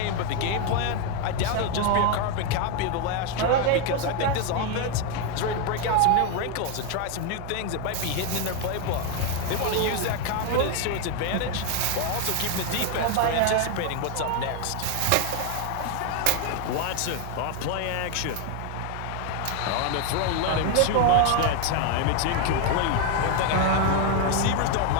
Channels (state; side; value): different; both; correlation 0.01